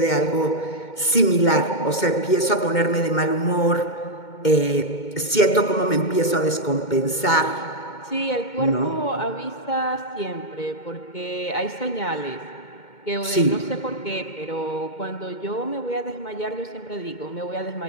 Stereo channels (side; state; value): right; late; 2.2 ms